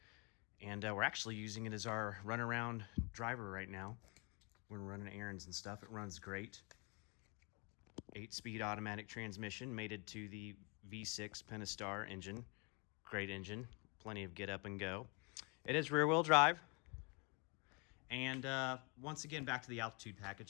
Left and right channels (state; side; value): quieter; right; 32.0 dB